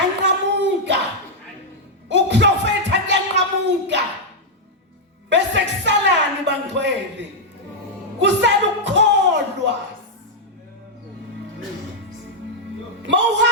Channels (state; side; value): normal; both; correlation -0.04